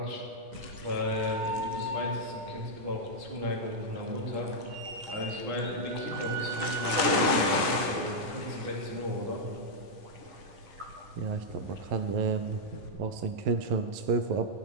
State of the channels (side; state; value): left; late; 10 ms